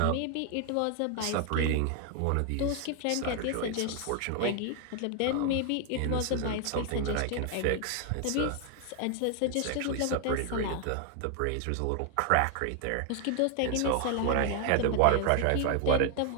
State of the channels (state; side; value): different; both; correlation 0.00